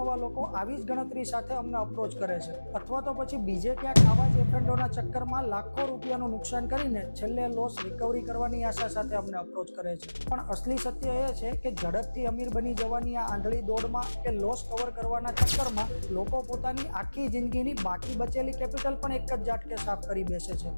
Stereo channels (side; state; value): both; inverted; correlation -1.00